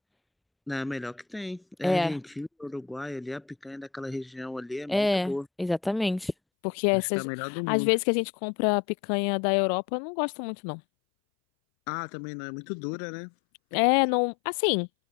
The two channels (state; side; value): drops out; right; at 6.4 s